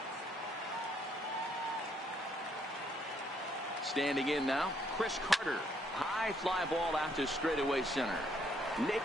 Standing in now, Chris Carter. High fly ball out to straightaway center.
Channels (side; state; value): both; normal; correlation 0.69